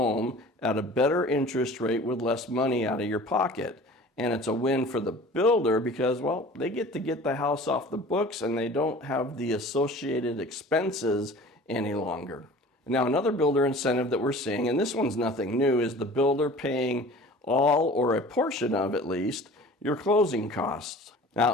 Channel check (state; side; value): normal; both; correlation 0.43